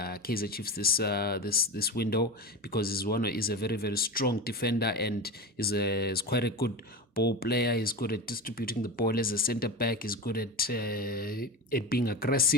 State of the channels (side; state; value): both; normal; correlation 0.24